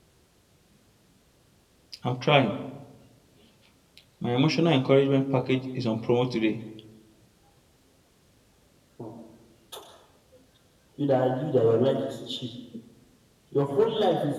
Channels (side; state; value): both; identical; correlation 1.00